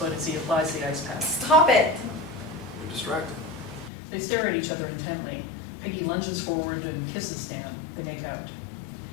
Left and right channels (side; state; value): right; drops out; at 3.9 s